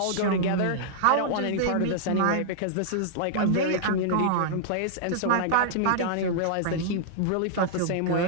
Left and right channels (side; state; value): both; different; correlation -0.01